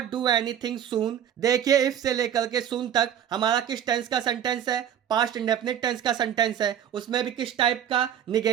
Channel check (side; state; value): left; quieter; 9.6 dB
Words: do anything soon. देखिए इफ से लेकर के सून तक हमारा किस टेंस का सेंटेंस है? पास्ट इंडेफिनिट टेंस का सेंटेंस है। उसमें भी किस टाइप का?